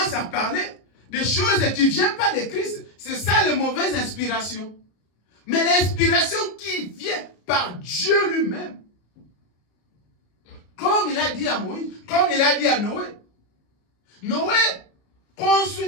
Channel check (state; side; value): late; right; 33 ms